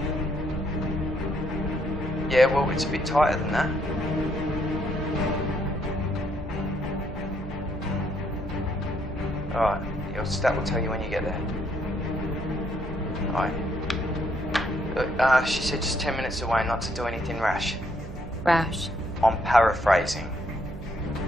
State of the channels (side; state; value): right; noise; hum, 12 dB below the sound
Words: Yeah, well, it's a bit tighter than that. Alright, your stat will tell you when you get there. Alright. Look, she said just 10 minutes away, not to do anything rash. Rash. I'm paraphrasing.